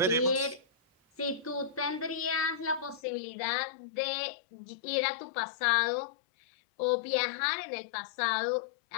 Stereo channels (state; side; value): drops out; right; at 3.0 s